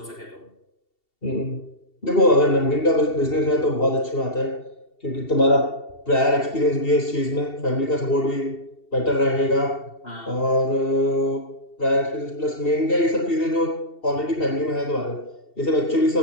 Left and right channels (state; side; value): late; right; 2.7 ms